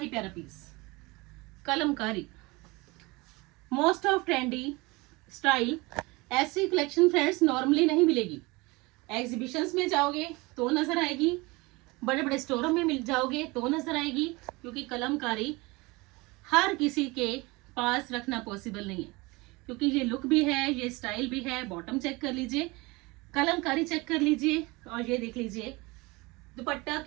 प्यारा piece Kalamkari, most of trendy style. ऐसी कलेक्शन फ्रेंड्स नॉर्मली नहीं मिलेगी, एग्जीबिशंस में जाओगे तो नजर आएगी, बड़े बड़े स्टोरों में मिल जाओगे तो नजर आएगी, क्योंकि कलमकारी हर किसी के पास रखना पॉसिबल नहीं है, क्योंकि ये लुक भी है, ये स्टाइल भी है। बॉटम चेक कर लीजिए, कलमकारी चेक कर लीजिए, और ये देख लीजिए दुपट्टा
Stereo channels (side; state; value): left; quieter; 24.1 dB